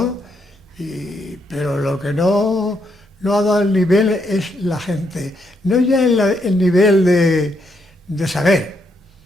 pero lo que no ha dado el nivel es la gente. No ya el nivel de saber,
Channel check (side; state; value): both; normal; correlation 0.77